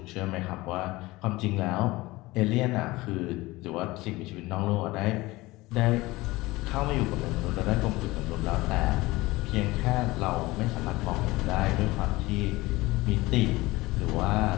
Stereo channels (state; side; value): quieter; right; 20.3 dB